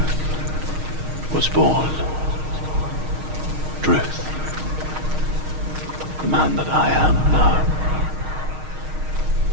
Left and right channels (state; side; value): late; left; 6.4 ms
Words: was born. Druth. The man that I am now.